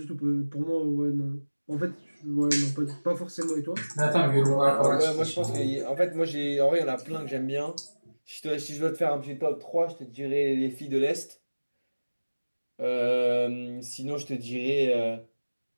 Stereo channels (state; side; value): inverted; both; correlation -1.00